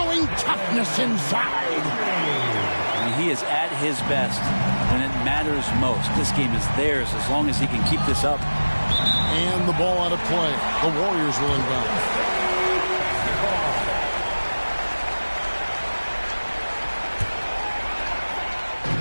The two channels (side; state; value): both; inverted; correlation -1.00